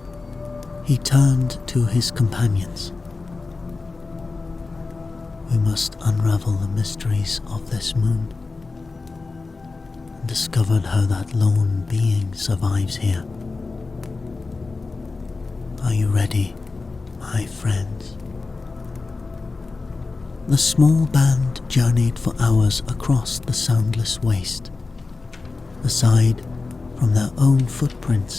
He turned to his companions. We must unravel the mysteries of this moon, and discover how that lone being survives here. Are you ready, my friends? The small band journeyed for hours across the soundless waste. Aside from their own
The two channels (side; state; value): right; quieter; 3.9 dB